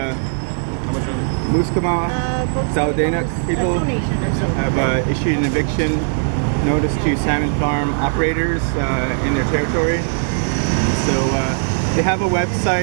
Muskama Saldanak people have issued an eviction notice to salmon farm operators in their territory. So they have a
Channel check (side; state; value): left; silent; digital silence